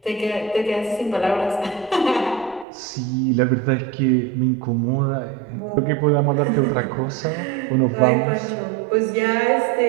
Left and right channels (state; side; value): drops out; left; at 2.7 s